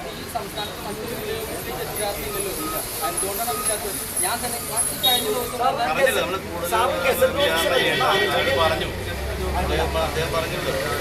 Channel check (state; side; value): identical; both; correlation 1.00